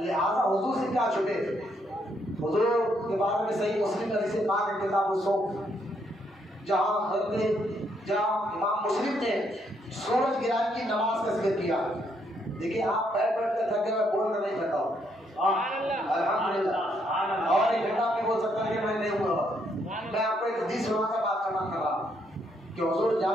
حضور سے کیا چھپے، حضور کے بارے میں صحیح مسلم حدیث پاک کتاب الصوم جہاں امام مسلم نے سورج گران کی نماز کا ذکر کیا، دیکھیے آپ بیٹھ کر تھکے ہوئے بول کر نہیں تھکا ہو، الحمدللہ، اور ایک گھنٹہ میں بول سکتا کہ میں نہیں ہوا، میں آپ کو ایک حدیث سنا کر بات کرنا کر رہا کہ حضور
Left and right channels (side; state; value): both; normal; correlation 0.73